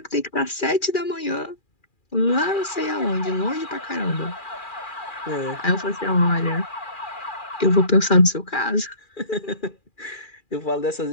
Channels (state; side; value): late; right; 2.4 ms